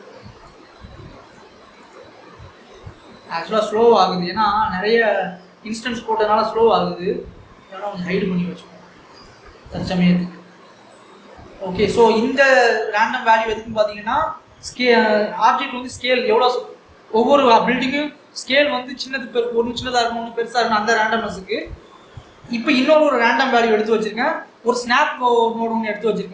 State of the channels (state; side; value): identical; both; correlation 1.00